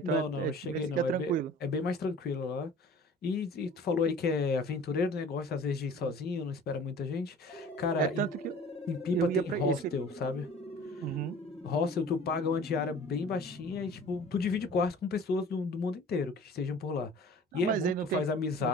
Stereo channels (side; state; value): both; normal; correlation 0.46